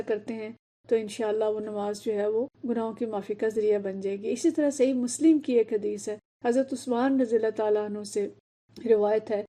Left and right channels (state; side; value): identical; both; correlation 1.00